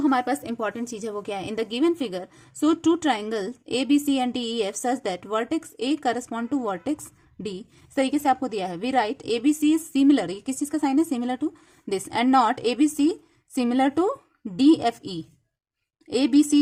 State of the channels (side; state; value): both; identical; correlation 1.00